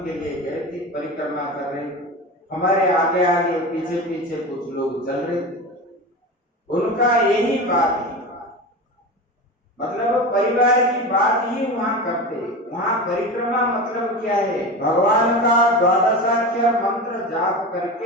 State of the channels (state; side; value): normal; both; correlation 0.27